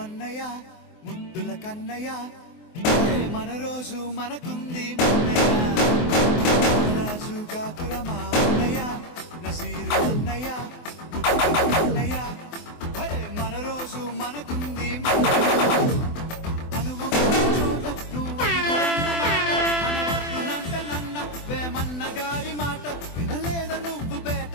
అన్నయ్య ముద్దుల కన్నయ్య మన రోజు మనకుంది మన్నయ్య. నారాజు కాకురమా అన్నయ్య నజీరు అన్నయ్య ముద్దుల కన్నయ్య మన రోజు మనకుంది మన్నయ్య.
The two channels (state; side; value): late; right; 24 ms